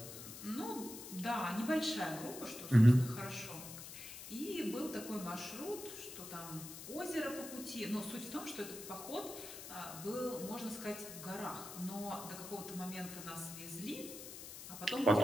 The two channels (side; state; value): left; noise; hiss, 11 dB below the sound